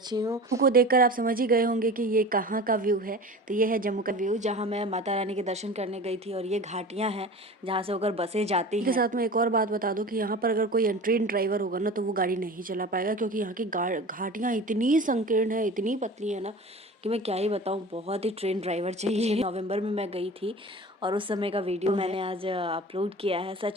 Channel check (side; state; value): both; normal; correlation 0.36